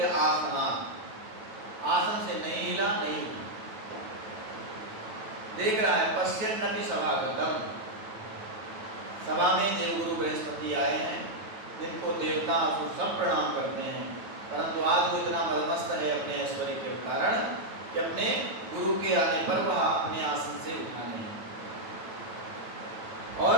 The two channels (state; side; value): late; left; 9.1 ms